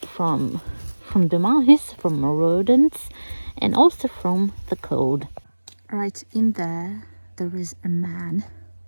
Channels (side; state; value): both; inverted; correlation -1.00